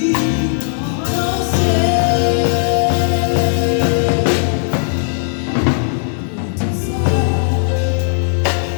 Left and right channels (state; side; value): silent; right; 69 dB below the other